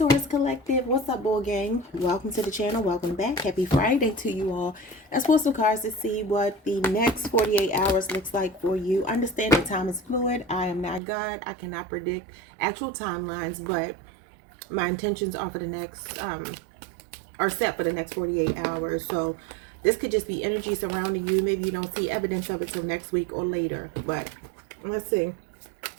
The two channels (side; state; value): left; drops out; at 11.0 s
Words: Collective, what's up, bull gang? Welcome to the channel. Welcome back. Happy Friday to you all. Let's pull some cards to see what the next 48 hours looks like for you. Understand that time is fluid. I am not God. I cannot predict actual timelines, but my intentions are for the next are set for the next 48 hours. So this could just be energy surrounding you. Maybe you don't see evidence of it till next week or later, but let's see